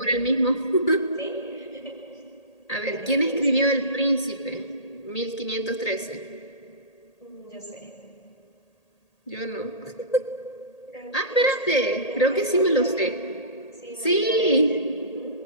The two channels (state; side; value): late; right; 1.8 ms